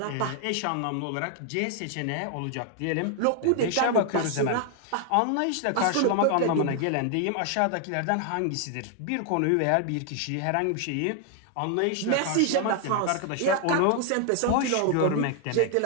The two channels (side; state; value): both; different; correlation 0.00